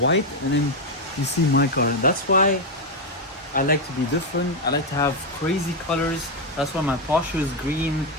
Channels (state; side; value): normal; both; correlation 0.04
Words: and then you see my car. That's why I like to be different. I like to have crazy colors. That's why my Porsche is green,